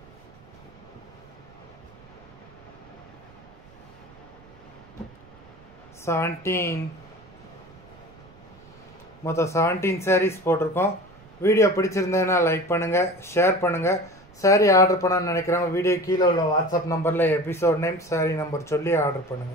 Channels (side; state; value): right; noise; rumble, 25 dB below the sound